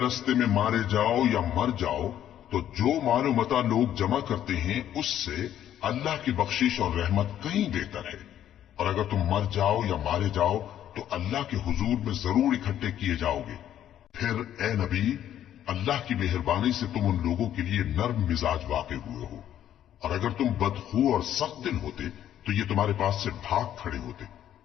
میں مارے جاؤ یا مر جاؤ تو جو مال و متاع لوگ جمع کرتے ہیں اس سے اللہ کی بخشش اور رحمت کہیں بہتر ہے. اور اگر تم مر جاؤ یا مارے جاؤ تو اللہ کے حضور میں ضرور اکٹھے کیے جاؤ گے. پھر اے نبی، اللہ کی مہربانی سے تم ان لوگوں کے لیے نرم مزاج واقع ہوئے ہو. اور اگر تم بدخو اور سخت دل ہوتے تو یہ تمہارے پاس سے بھاگ کھڑے ہوتے.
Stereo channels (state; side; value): quieter; right; 11.0 dB